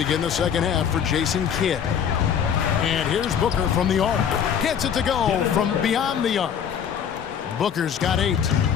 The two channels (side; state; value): right; quieter; 8.1 dB